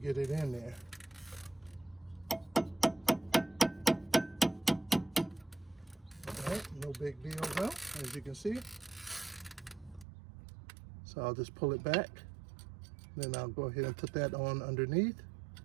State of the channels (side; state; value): left; drops out; at 10.1 s